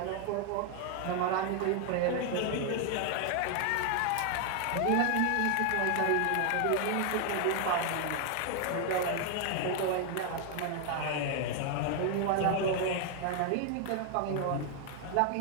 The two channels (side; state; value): both; different; correlation 0.00